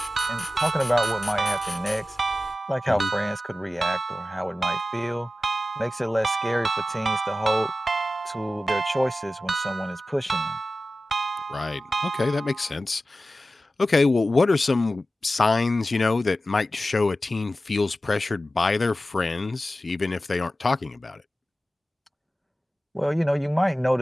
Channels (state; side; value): normal; both; correlation 0.94